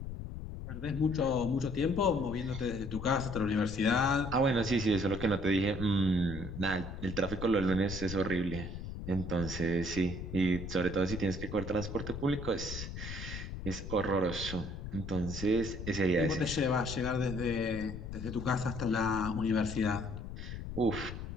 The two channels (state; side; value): noise; left; rumble, 8 dB below the sound